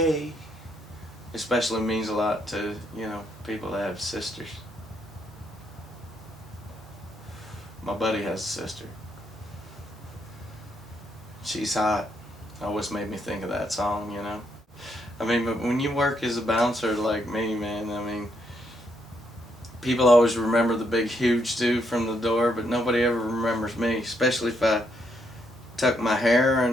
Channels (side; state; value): both; normal; correlation 0.76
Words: Especially means a lot to, people that have sisters. My buddy has a sister. She's hot. Always made me think of that song. I mean, but when you work as a bouncer like me, man, I mean, people always remember the big, huge dude from the door, but nobody ever remembers me, especially if I tuck my hair